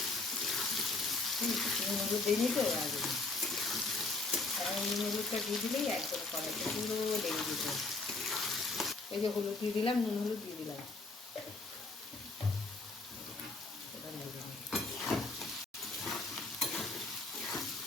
হলুদ দিয়ে নিতে হবে আগে। নুন হলুদটা দিয়ে দিলেই একদম কড়াইতে পুরো লেগে দিতে। এই যে হলুদ দিয়ে দিলাম, নুন হলুদ দিয়ে দিলাম।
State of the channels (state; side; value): quieter; right; 3.4 dB